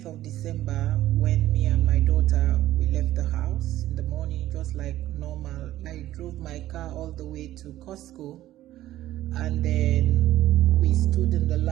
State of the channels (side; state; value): left; quieter; 14.3 dB